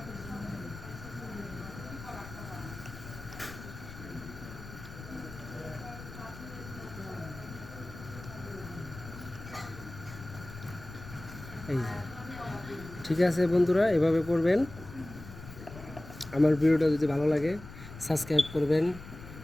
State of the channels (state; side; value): noise; left; rumble, 14 dB below the sound